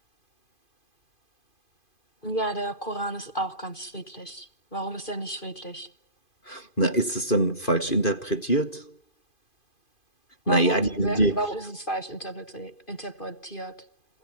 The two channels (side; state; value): right; late; 2.5 ms